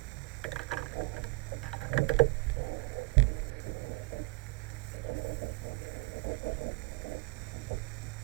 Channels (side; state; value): left; quieter; 27.3 dB